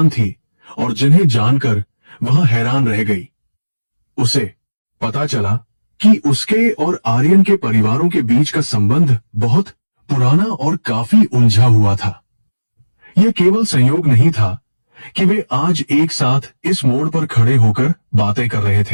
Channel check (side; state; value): both; inverted; correlation -1.00